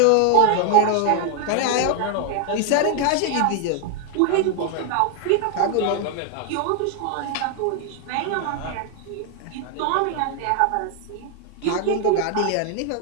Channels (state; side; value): different; both; correlation 0.00